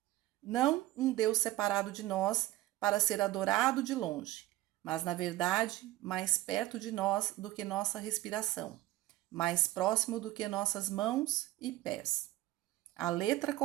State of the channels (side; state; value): left; quieter; 16.2 dB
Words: Não um Deus separado de nós para ser adorado de longe, mas, na verdade, mais perto de nós do que nossa respiração, mais próximo do que nossas mãos e pés. A letra